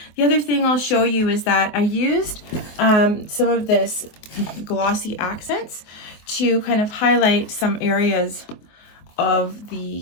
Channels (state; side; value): late; right; 24 ms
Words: The other thing I'll show you is that I used some of this glossy accents to kind of highlight some areas of the